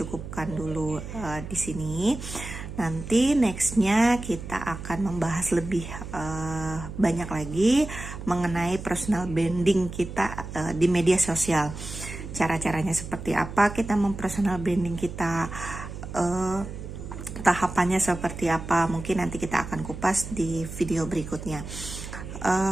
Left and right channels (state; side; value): noise; right; hum, 10 dB below the sound